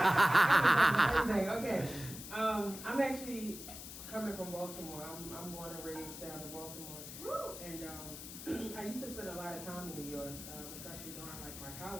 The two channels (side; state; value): left; noise; hiss, 11 dB below the sound